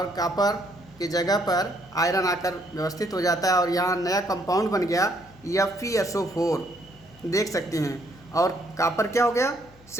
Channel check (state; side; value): noise; left; hum, 25 dB below the sound